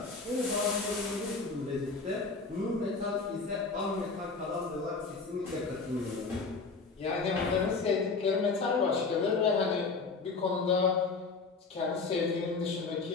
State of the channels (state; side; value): quieter; right; 4.3 dB